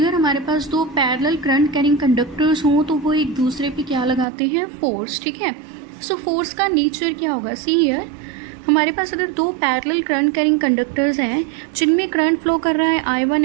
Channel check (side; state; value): left; drops out; at 4.2 s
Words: हमारे पास दो पैरेलल करंट कैरिंग कंडक्टर्स हों तो वो एक दूसरे पे क्या लगाते हैं, फोर्स, ठीक है। सो फोर्स का नेचर क्या होगा, सी हियर हमारे पास अगर दो पैरेलल करंट कैरिंग कंडक्टर्स हैं जिनमें करंट फ्लो कर रहा है I1